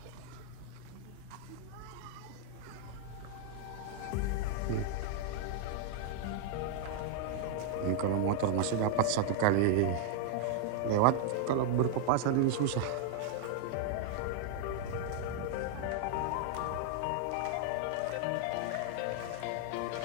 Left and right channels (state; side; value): different; both; correlation 0.00